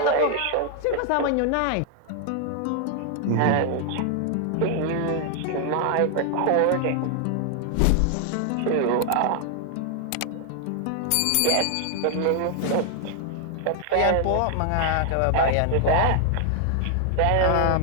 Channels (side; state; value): both; different; correlation 0.00